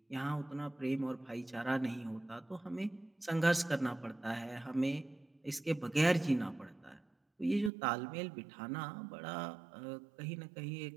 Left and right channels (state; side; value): drops out; left; at 7.7 s